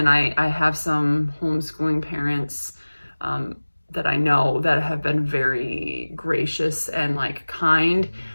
I have some homeschooling parents that I know that have been very gracious and like kind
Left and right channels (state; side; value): inverted; both; correlation -1.00